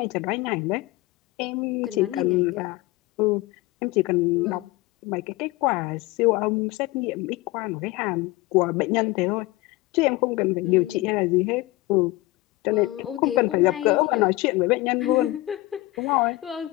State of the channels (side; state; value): right; quieter; 19.6 dB